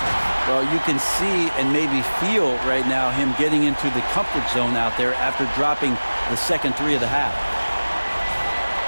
Well, you can see and maybe feel right now him getting into the comfort zone out there after dropping the second 3 of the half.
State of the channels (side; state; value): both; inverted; correlation -1.00